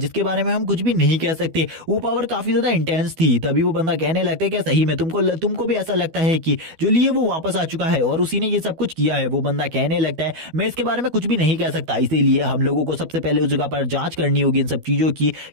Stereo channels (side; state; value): left; late; 12 ms